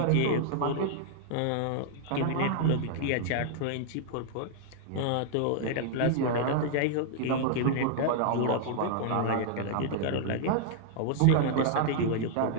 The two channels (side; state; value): both; different; correlation -0.01